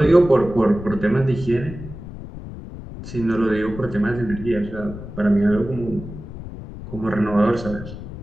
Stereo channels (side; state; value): left; noise; rumble, 12 dB below the sound